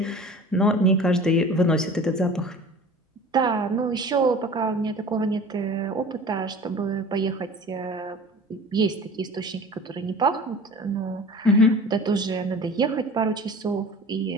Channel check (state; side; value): normal; both; correlation 0.41